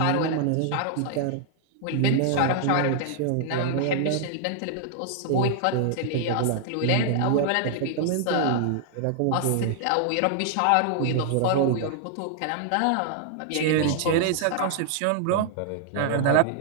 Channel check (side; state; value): both; different; correlation 0.00